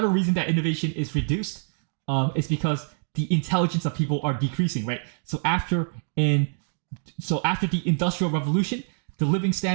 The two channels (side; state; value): left; silent; digital silence